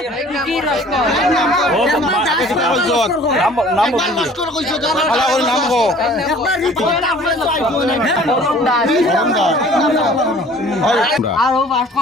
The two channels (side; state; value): both; normal; correlation 0.50